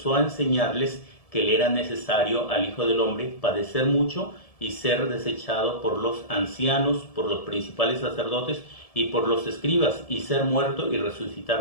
a enseñarles que le era necesario al Hijo del Hombre padecer mucho y ser desechado por los ancianos, por los principales sacerdotes y por los escribas, y ser muerto y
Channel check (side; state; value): right; late; 1.7 ms